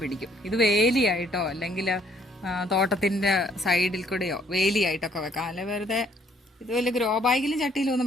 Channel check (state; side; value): normal; both; correlation 0.65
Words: പിടിക്കും. ഇത് വേലിയായിട്ടോ അല്ലെങ്കിൽ തോട്ടത്തിന്റെ സൈഡിൽ കൂടെയോ വേലിയായിട്ടൊക്കെ വെക്കാം. അല്ലെ വെറുതെ ഇത് വലിയ ഗ്രോ ബാഗിലും ചട്ടിയിലും